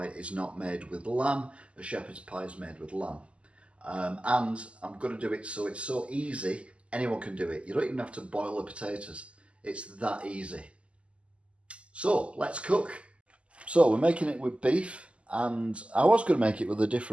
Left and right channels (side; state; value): left; late; 0.057 ms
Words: is not made with lamb, a shepherd's pie is made with lamb. And I'm going to do it so it's so easy, anyone can do it. You don't even have to boil the potatoes. It's that easy. So, let's cook. So, we're making it with beef, and I was going to make it with a